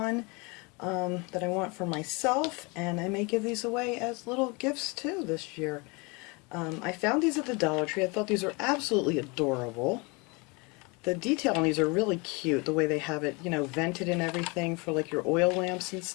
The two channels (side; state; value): right; quieter; 28.5 dB